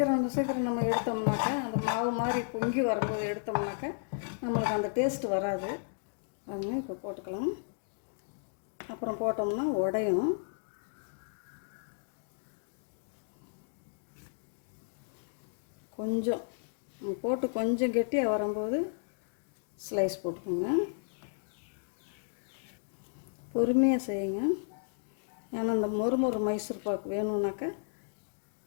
நம்ம எடுத்தோம்னாக்கா, அந்த மாவு மாதிரி பொங்கி வரும்போது எடுத்தோம்னாக்கா நம்மளுக்கு அந்த டேஸ்ட்டு வராது. அதுங்க இப்போ போட்டுக்கலாம். அப்புறம் போட்டோம்னா உடையும். கொஞ்சம் போட்டு கொஞ்சம் கெட்டியாக வரும்போது ஸ்லைஸ் போட்டுக்கோங்க. பொறுமையாக செய்யுங்க. ஏன்னா இந்த மொறு மைசூர் பாக்கு வேணும்னாக்கா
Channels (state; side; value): silent; right; digital silence